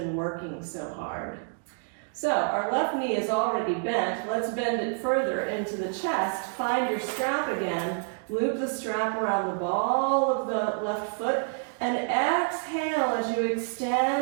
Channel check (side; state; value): left; silent; 58 dB below the other